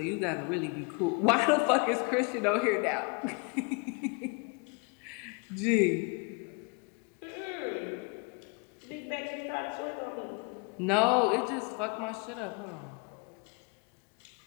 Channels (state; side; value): quieter; right; 32.5 dB